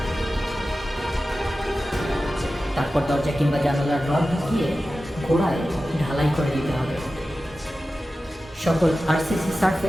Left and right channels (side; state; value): both; normal; correlation 0.94